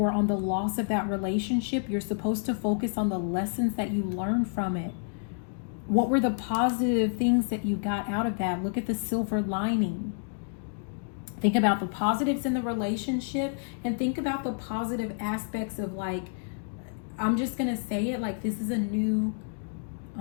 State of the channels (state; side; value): silent; right; digital silence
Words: on the loss of that relationship, you're supposed to focus on the lessons that you learned from it. What were the positive things that you got out of that? Look at the silver lining. Think about the positives in the relationship and think about the positive aspects of, like, I'm just going to say it, like, this is a new,